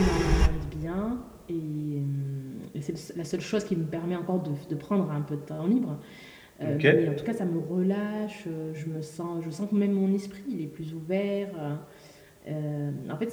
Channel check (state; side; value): identical; both; correlation 1.00